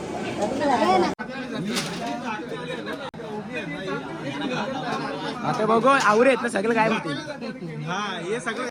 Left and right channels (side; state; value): both; identical; correlation 1.00